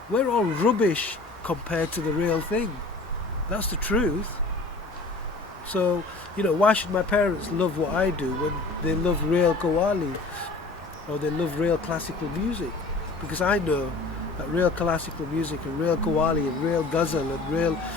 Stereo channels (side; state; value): right; quieter; 3.4 dB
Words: We're all rubbish compared to the real thing. That's the truth. So, you know, why should my parents love what I do when they love real Qawwali or they love real classical music? Because I know that real classical music and real Qawwali and real ghazal and real,